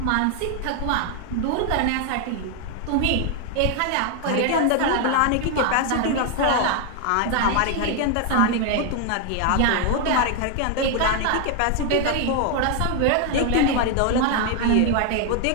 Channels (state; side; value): different; both; correlation 0.00